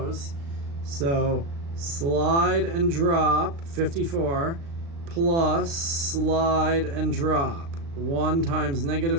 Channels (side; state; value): left; late; 36 ms